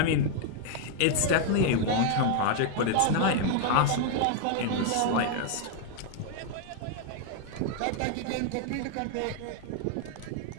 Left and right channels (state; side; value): different; both; correlation 0.00